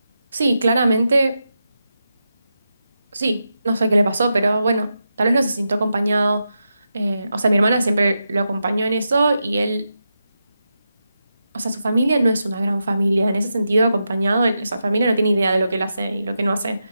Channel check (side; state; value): both; inverted; correlation -0.87